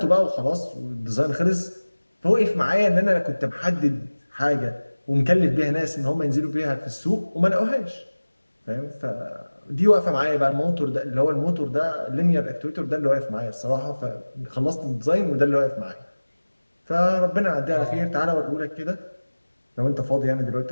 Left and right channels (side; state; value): both; inverted; correlation -1.00